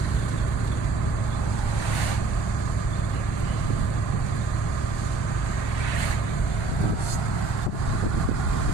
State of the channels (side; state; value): left; quieter; 3.8 dB